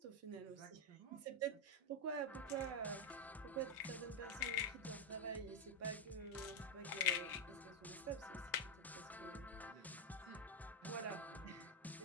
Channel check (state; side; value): normal; both; correlation 0.04